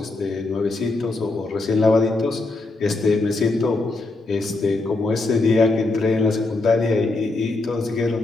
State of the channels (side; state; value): right; quieter; 3.2 dB